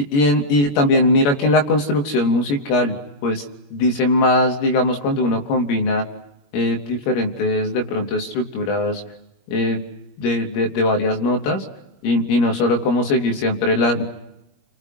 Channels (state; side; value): late; right; 21 ms